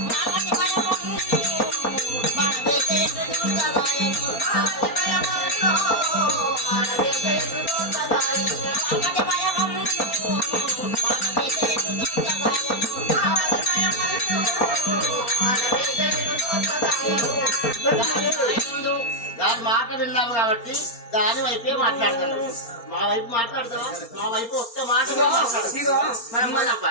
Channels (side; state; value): right; late; 4.3 ms